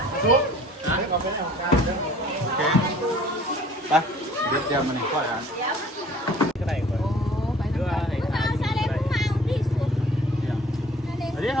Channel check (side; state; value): both; normal; correlation 0.52